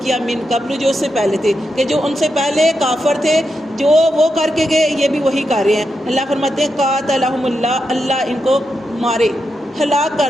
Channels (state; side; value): normal; both; correlation 0.86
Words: کیا، من قبل، جو اس سے پہلے تھے، کہ جو ان سے پہلے کافر تھے، جو وہ کر کے گئے یہ بھی وہی کر رہے ہیں. اللہ فرماتے ہیں قاتلہم اللہ، اللہ ان کو مارے، ہلاک